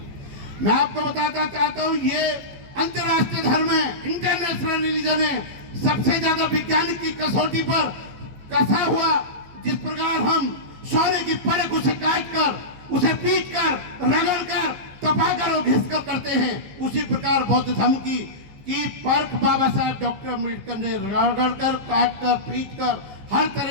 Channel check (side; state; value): left; late; 15 ms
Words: मैं आपको बताना चाहता हूं, ये अंतरराष्ट्रीय धर्म है, इंटरनेशनल रिलीजन है, सबसे ज्यादा विज्ञानिक की कसौटी पर कसा हुआ। जिस प्रकार हम सोने की परख उसे काट कर, उसे पीट कर, रगड़ कर, तपाकर और घिस कर करते हैं, उसी प्रकार बौद्ध धर्म की परख बाबा साहेब डॉक्टर अम्बेडकर ने रगड़ कर, काट कर, पीट कर, हर